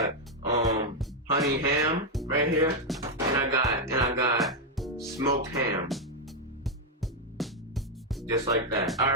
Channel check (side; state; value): both; normal; correlation 0.02